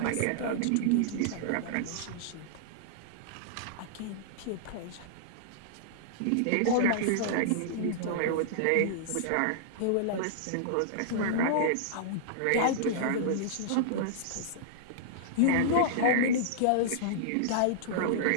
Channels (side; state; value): both; different; correlation -0.02